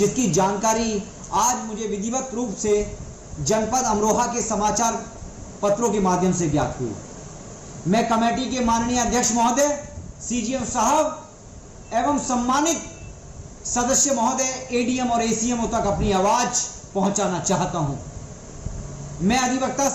जानकारी आज मुझे विधिवत रूप से जनपद अमरोहा के समाचार पत्रों के माध्यम से ज्ञात हुई। मैं कमेटी के माननीय अध्यक्ष महोदय, सीजीएम साहब एवं सम्मानित सदस्य महोदय एडीएम और एसीएमओ तक अपनी आवाज पहुंचाना चाहता हूं। मैं अधिवक्ता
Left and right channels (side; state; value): both; identical; correlation 1.00